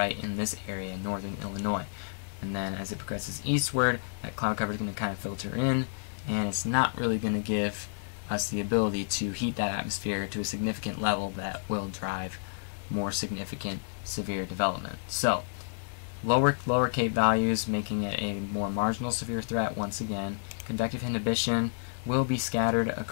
in this area in northern Illinois. And then as it progresses eastward, that cloud cover is going to kind of filter in, and it's not really going to give us the ability to heat that atmosphere to a significant level that will drive more significant severe development. So lower cape values, making it a more marginal severe threat once again. Convective inhibition will be scattered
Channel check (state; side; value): silent; right; 58 dB below the other